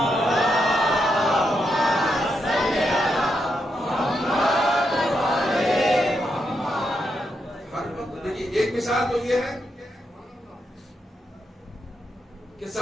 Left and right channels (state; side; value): normal; both; correlation 0.82